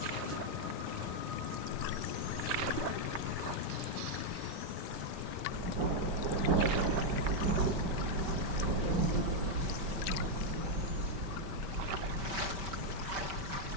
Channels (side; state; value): left; late; 5.1 ms